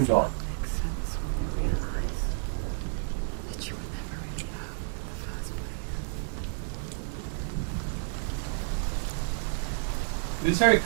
Exile makes sense when you realize that you were never really home in the first place. It is very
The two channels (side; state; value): left; silent; digital silence